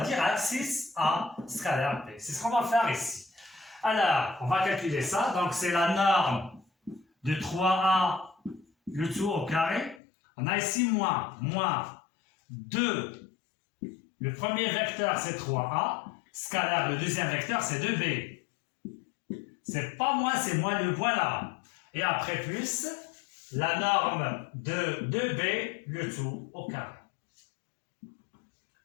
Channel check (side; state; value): right; drops out; at 10.0 s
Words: direct, 6a scalaire b. C'est ce qu'on va faire ici. Alors, on va calculer ça. Donc, c'est la norme de 3a, le tout au carré. On a ici moins 2. Le premier vecteur, c'est 3a. Scalaire, le deuxième vecteur, c'est 2b. C'est pas moins, c'est moins le voilà. Et après plus, la norme de 2b, le tout au carré,